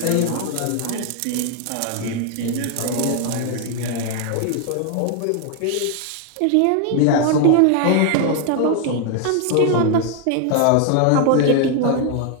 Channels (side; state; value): both; different; correlation 0.00